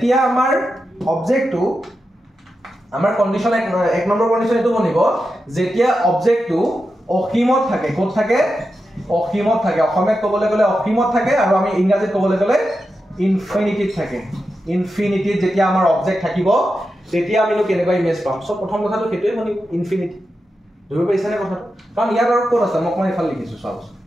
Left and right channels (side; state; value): both; normal; correlation 0.89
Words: আমাৰ অবজেক্টটো আমাৰ কন্ডিশন এক নম্বৰ কন্ডিশন এটো বনিব যেতিয়া অবজেক্টটো অসীমত থাকে ক'ত থাকে অসীমত থাকে অসমীয়াত ক'বলৈ গ'লে অসীমত থাকে আৰু আমি ইংৰাজীত ক'বলৈ গ'লে ইনফিনিটিত থাকে ইনফিনিটিত যেতিয়া আমাৰ অবজেক্ট থাকিব তেতিয়া আমি কেনেকুৱা ইমেজ পাম সব প্ৰথম কথাটো হেতুই বনিব ইনফিনিটি ধৰিব পাইছানে কথাটো কাৰণ ইয়াত আৰু ক'ত আছে মই ইফালে লিখিছো চাওক